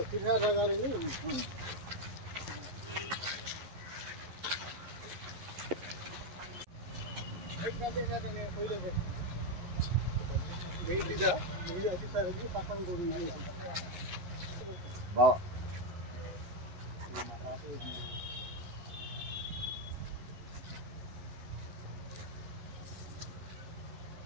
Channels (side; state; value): left; late; 11 ms